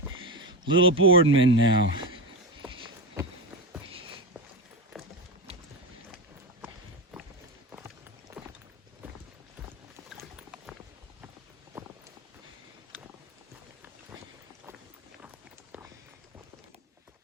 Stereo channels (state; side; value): normal; both; correlation 0.16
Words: Little Boardman now.